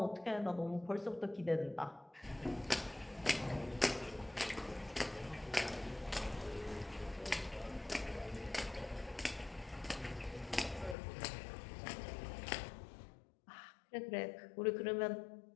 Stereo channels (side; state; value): right; drops out; at 11.0 s